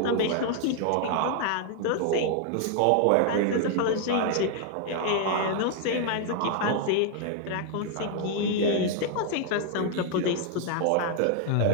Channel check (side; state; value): both; different; correlation 0.00